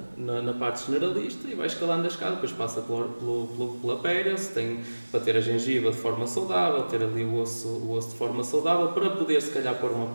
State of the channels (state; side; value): inverted; both; correlation -1.00